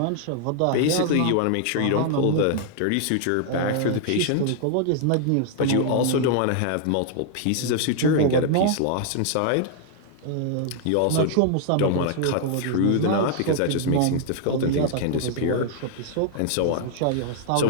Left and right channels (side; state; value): both; different; correlation 0.00